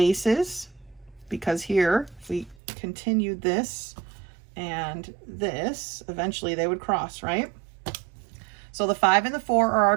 because here, if we continued this and this, eventually they would cross, right? So the 5 and the 4 are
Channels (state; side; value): drops out; left; at 2.6 s